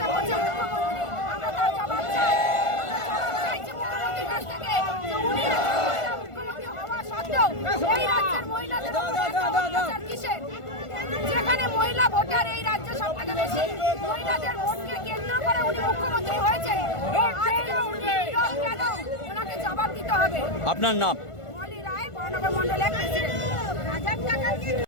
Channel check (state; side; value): late; right; 1.5 ms